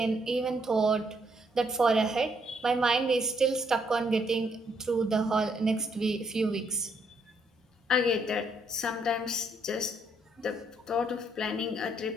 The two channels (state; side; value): normal; both; correlation 0.72